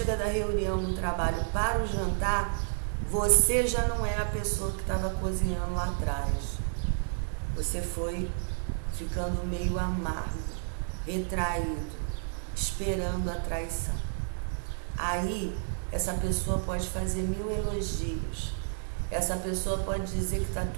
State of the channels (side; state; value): left; silent; digital silence